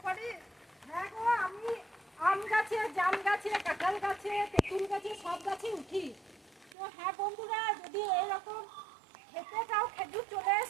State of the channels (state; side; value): drops out; left; at 6.8 s